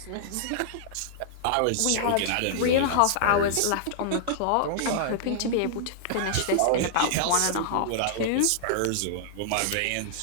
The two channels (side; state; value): both; different; correlation -0.01